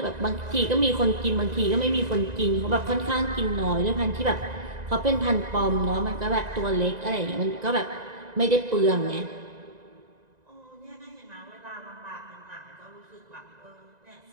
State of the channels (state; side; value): late; left; 1.9 ms